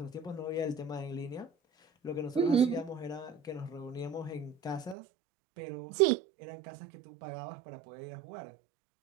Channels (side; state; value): left; drops out; at 5.0 s